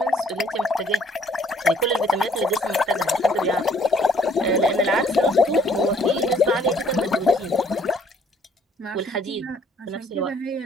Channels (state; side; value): normal; both; correlation 0.61